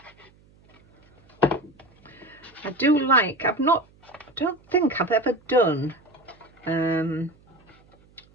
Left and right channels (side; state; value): right; noise; hum, 30 dB below the sound